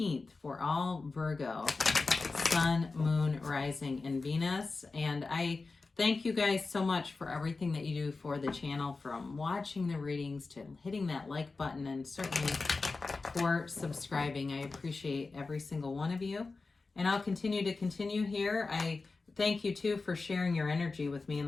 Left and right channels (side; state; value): right; quieter; 3.9 dB